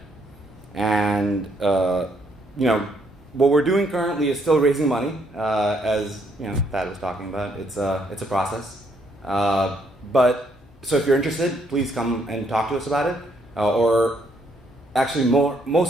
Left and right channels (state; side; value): normal; both; correlation 0.71